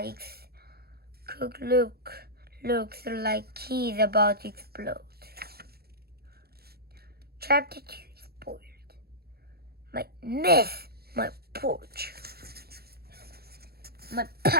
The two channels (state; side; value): late; left; 0.46 ms